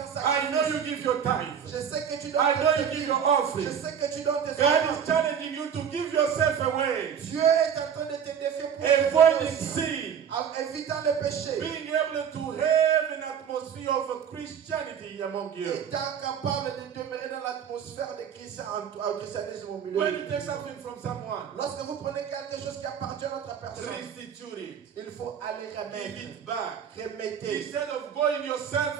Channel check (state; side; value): quieter; left; 8.0 dB